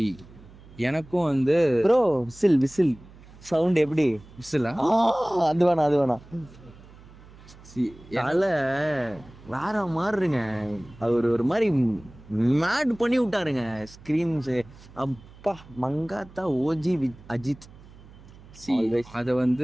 எனக்கும் வந்து ப்ரோ விசில் விசில் சவுண்ட் எப்படி? விசிலா? அது வேணாம் அது வேணாம். சி தலை வேற மாதிரிங்க. அது ஒரு மாதிரி மேட் பண்ணி விட்டாருங்க ஸ்க்ரீன்ஸு. அப்பா மங்காத்தா ஓஜி வித் அஜித். சி அதை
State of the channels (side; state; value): right; noise; hum, 21 dB below the sound